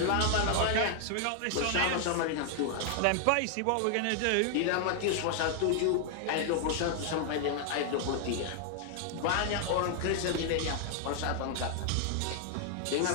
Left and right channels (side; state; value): both; different; correlation 0.00